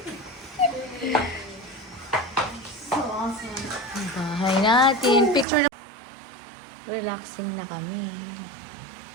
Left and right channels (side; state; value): left; drops out; at 5.5 s